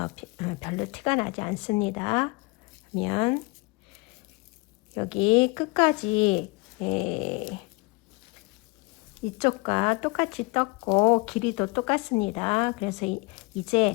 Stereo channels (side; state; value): right; quieter; 27.1 dB